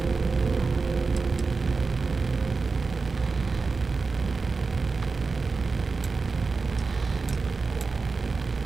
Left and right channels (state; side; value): quieter; left; 4.3 dB